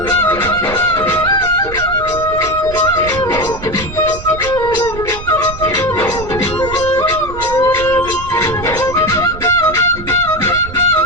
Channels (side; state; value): right; noise; rumble, 11 dB below the sound